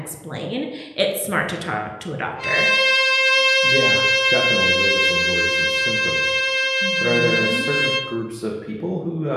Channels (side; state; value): both; identical; correlation 1.00